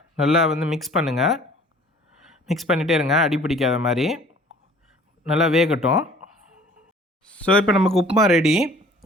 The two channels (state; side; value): normal; both; correlation 0.51